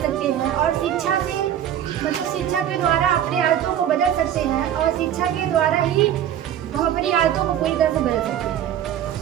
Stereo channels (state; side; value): quieter; left; 10.5 dB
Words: सकते हैं, और शिक्षा के द्वारा अपने आदतों को बदल सकते हैं, और शिक्षा के द्वारा ही हम अपनी आदतों को पूरी तरह से बदल सकते हैं।